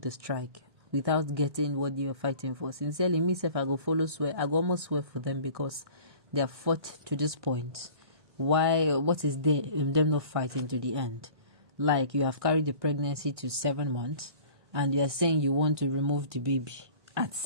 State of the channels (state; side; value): late; left; 1.6 ms